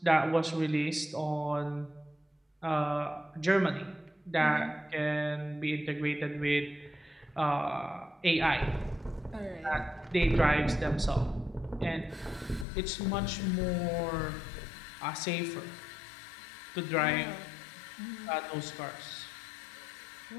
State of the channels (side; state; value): right; drops out; at 12.7 s